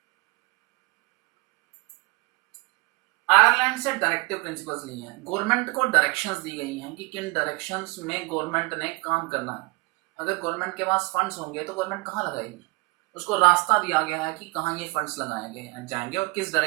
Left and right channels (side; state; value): left; quieter; 27.2 dB